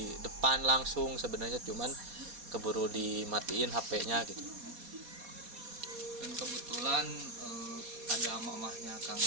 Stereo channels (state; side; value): late; left; 4.2 ms